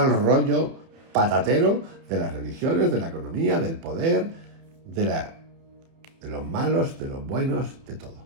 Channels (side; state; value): left; late; 30 ms